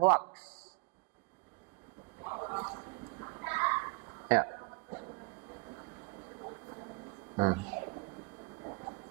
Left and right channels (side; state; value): left; quieter; 29.3 dB